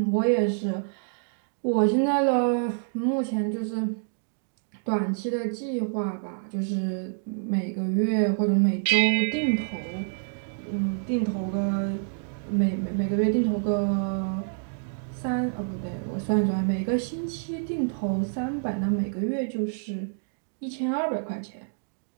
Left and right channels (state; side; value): silent; left; digital silence